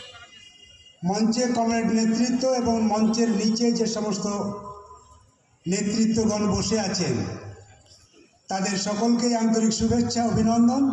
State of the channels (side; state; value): both; identical; correlation 1.00